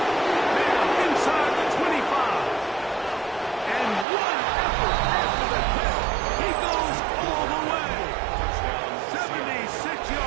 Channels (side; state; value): left; drops out; at 4.0 s